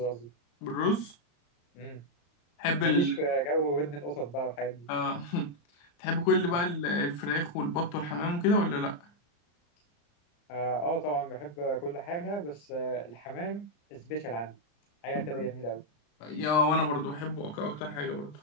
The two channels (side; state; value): right; late; 35 ms